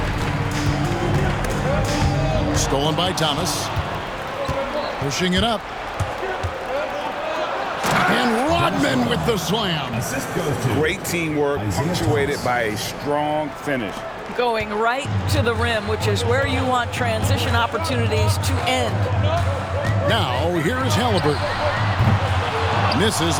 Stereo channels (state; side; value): identical; both; correlation 1.00